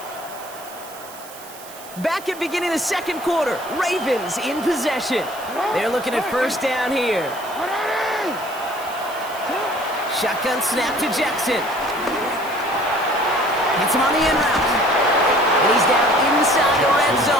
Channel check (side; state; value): right; noise; hiss, 17 dB below the sound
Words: Back at beginning of the 2nd quarter, Ravens in possession. They're looking at 1st down here. Shotgun snap to Jackson. Hits him on the end route. And he's down inside the red